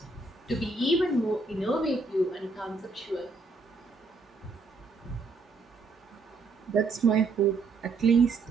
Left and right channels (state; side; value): quieter; left; 3.8 dB